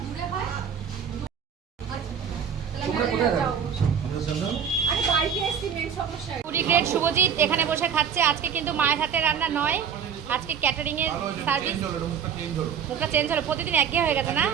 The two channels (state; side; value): quieter; left; 7.6 dB